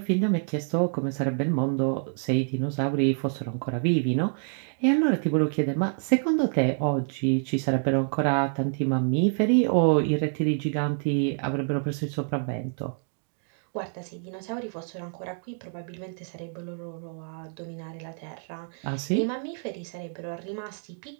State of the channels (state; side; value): silent; left; 60 dB below the other